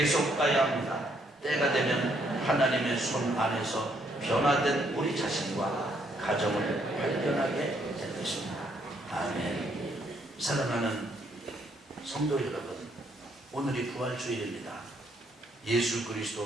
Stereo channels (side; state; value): both; normal; correlation 0.71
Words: 가야 합니다. 때가 되면 하나님의 손 안에서 변화된 우리 자신과 가정을 발견하게 될 것입니다. 아멘. 사랑하는 성도 여러분, 오늘이 부활주일입니다. 예수